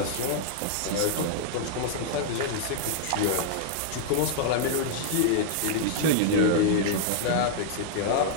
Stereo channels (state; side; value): different; both; correlation -0.01